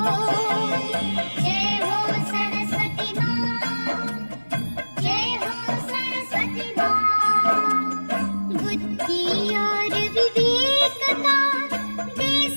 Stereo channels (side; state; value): both; inverted; correlation -1.00